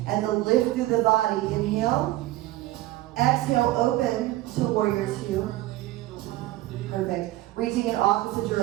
and the lift through the body. Inhale. Exhale, open to warrior two. Perfect. Reaching in opposite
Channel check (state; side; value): quieter; left; 16.7 dB